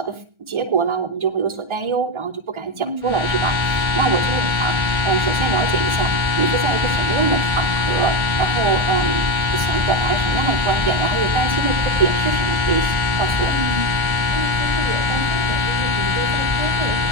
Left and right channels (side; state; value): left; late; 1.4 ms